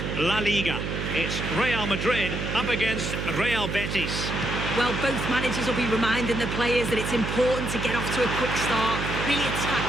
La Liga. It's Real Madrid up against Real Betis. Well, both managers will be reminding the players that it's important to get off to a quick start, really attack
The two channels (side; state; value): right; noise; hum, 4 dB below the sound